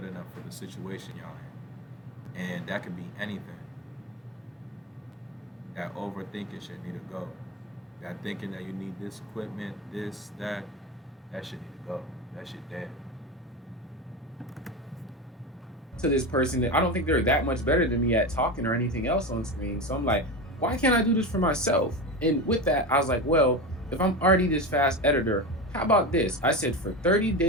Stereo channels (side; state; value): both; normal; correlation 0.22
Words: enough for the situation y'all in, and that could be anything. That overthinking shit need to go. Got thinking that you need this equipment, this, that. That shit need to go. That shit dead. To this person that I don't think they're that much better than me at talking or anything else on screen. So I'm like, why can't I do this for myself? And with that, I was like, well, if I'm already this fast editor, how about this? I said for 30